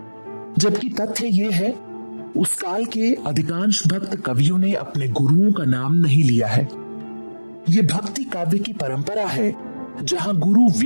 जबकि तथ्य ये है उस काल के अधिकांश भक्त कवियों ने अपने गुरुओं का नाम नहीं लिया है। ये भक्ति काव्य की परंपरा है जहां गुरु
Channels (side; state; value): both; inverted; correlation -1.00